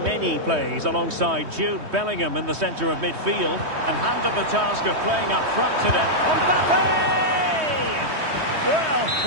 plays alongside Jude Bellingham in the centre of midfield. And handed the task of playing up front today. Mbappe! Well,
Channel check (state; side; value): late; left; 3.2 ms